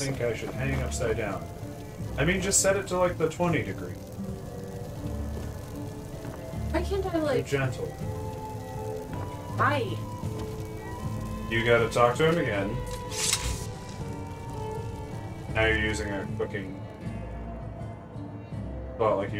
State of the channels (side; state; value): both; identical; correlation 1.00